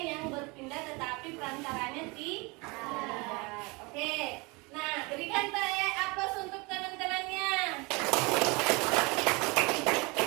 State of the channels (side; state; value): left; quieter; 27.1 dB